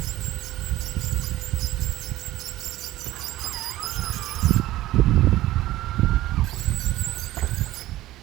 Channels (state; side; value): quieter; left; 15.9 dB